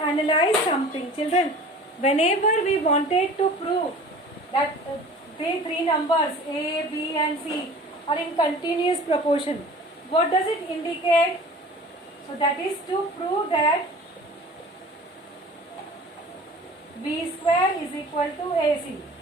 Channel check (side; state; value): both; normal; correlation 0.43